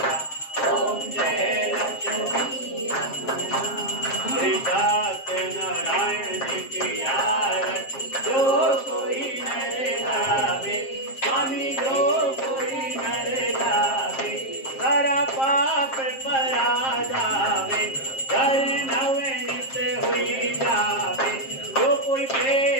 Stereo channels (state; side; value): late; right; 7.5 ms